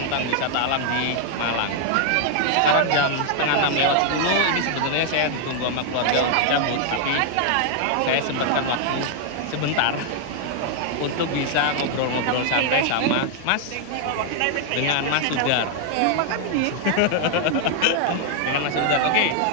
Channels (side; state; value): both; different; correlation 0.00